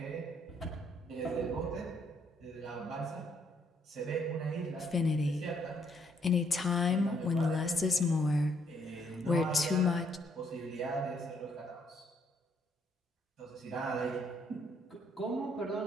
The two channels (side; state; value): both; normal; correlation 0.70